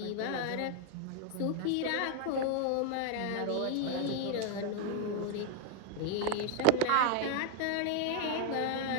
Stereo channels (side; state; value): both; different; correlation 0.00